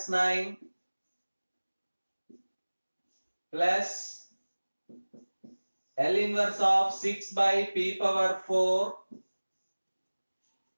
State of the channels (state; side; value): inverted; both; correlation -1.00